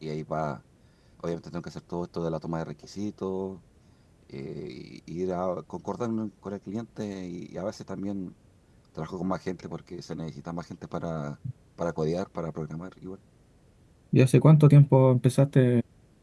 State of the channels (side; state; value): both; identical; correlation 1.00